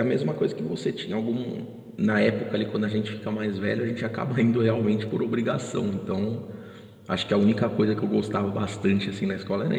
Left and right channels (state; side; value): identical; both; correlation 1.00